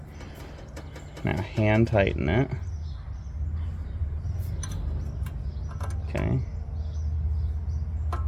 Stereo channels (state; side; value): identical; both; correlation 1.00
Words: Now hand tighten it. Okay. A